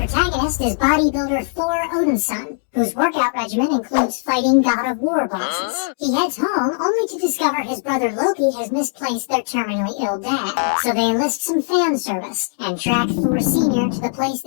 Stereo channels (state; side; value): silent; right; digital silence